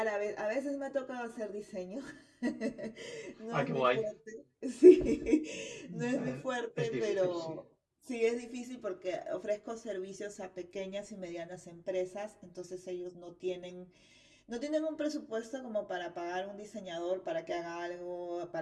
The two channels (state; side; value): identical; both; correlation 1.00